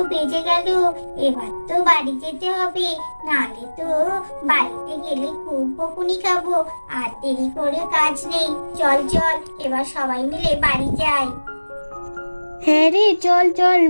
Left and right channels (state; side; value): inverted; both; correlation -1.00